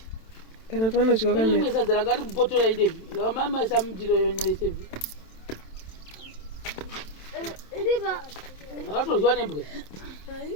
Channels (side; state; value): right; late; 27 ms